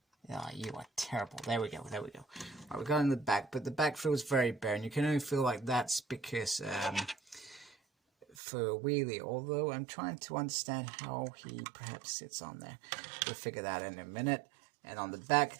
Oh, you are terrible. There we go. There we go. Right, we got in the back, but the back feels very bare, and you can only feel like that's because for Wheelie. Although I'm trying to understand how he perhaps sits on there. We'll figure that in a minute. And on the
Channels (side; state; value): left; drops out; at 8.3 s